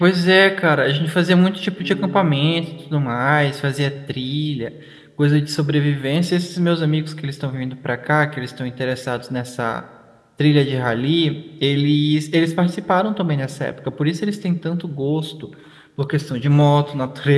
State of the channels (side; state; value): both; identical; correlation 1.00